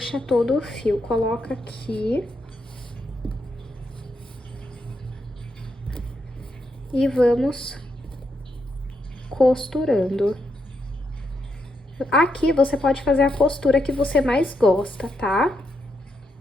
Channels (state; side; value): normal; both; correlation 0.81